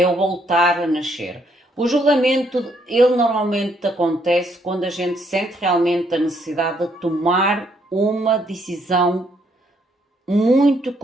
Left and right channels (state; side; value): normal; both; correlation 0.71